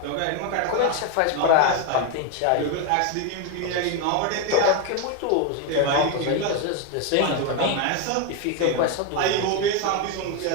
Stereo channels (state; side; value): different; both; correlation 0.02